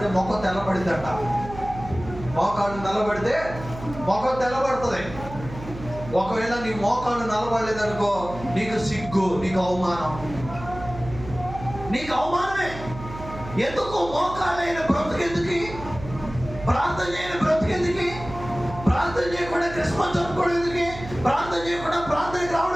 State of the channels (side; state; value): right; noise; hum, 12 dB below the sound